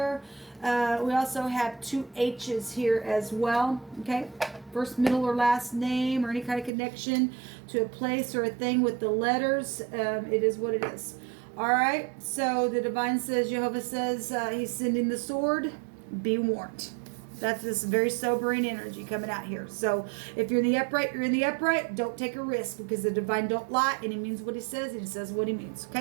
We also have 2 H's here as well. Okay, first, middle, or last name, or any kind of connection to a place or a thing with the letters. It is what it is. All right, so the divine says, Jehovah says, he's sending the sword. Be warned. That's this very sobering energy coming out here. So if you're in the upright, you're in the upright. Don't take a risk, because the divine don't lie, and he means what he says, and he says what he means.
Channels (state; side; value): drops out; left; at 6.7 s